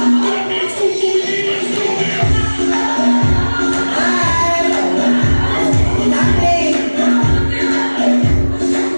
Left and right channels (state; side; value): inverted; both; correlation -1.00